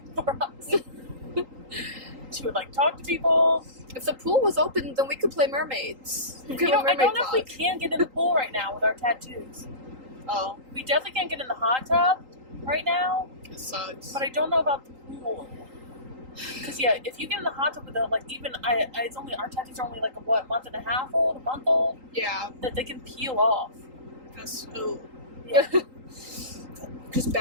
for us." She would like talk to people. If the pool was open, then we could play mermaids. We could You know, have a I don't mermaid know if we vlog. can get in the pool right now with our tattoos. Oh, We definitely can't get in the hot tub right now. it sucks. But I don't know about the pool. Because yeah, if you get in the hot tub with them, like even it's only our tattoos are only like a month and a half old, a month old, Yeah, that they can peel off. that's ooh. Yeah. Just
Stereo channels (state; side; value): late; left; 3.8 ms